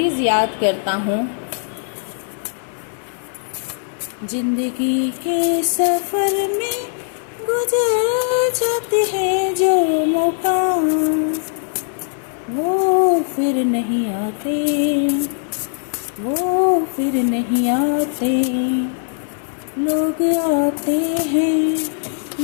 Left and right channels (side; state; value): right; silent; 57 dB below the other